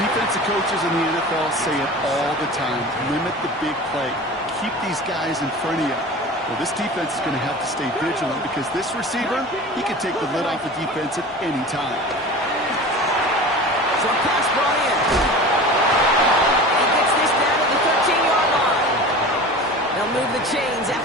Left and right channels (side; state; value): both; normal; correlation 0.36